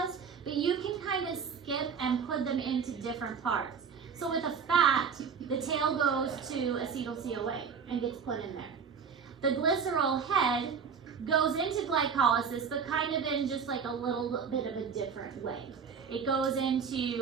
but you can kind of skip and put them into different parts. So with a fat, the tail goes to acetyl-CoA and gets put in there. The glycerol head goes into glycolysis, but kind of in just like a little bit of a different way. It goes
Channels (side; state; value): left; quieter; 6.3 dB